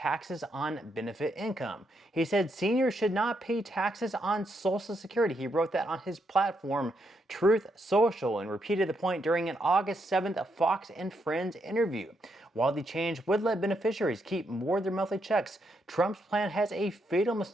on benefit income. He said seniors should not pay taxes on Social Security. He wrote that on his platform, Truth Social, and repeated the point during an August 7th Fox and Friends interview. While the change would let beneficiaries keep more of their monthly checks, Trump's plan has a fatal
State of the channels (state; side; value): normal; both; correlation 0.79